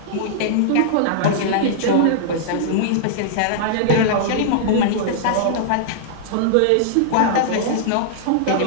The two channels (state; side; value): different; both; correlation -0.01